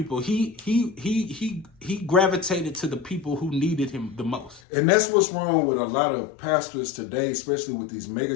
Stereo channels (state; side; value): drops out; right; at 4.6 s